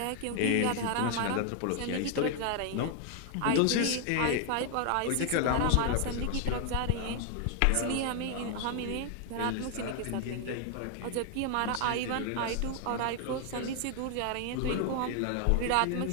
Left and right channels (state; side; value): different; both; correlation 0.00